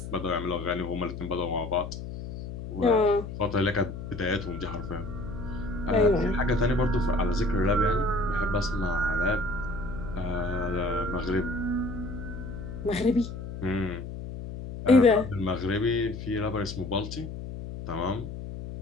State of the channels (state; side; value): noise; left; hum, 8 dB below the sound